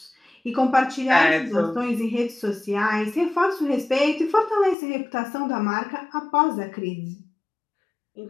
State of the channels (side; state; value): right; drops out; at 4.8 s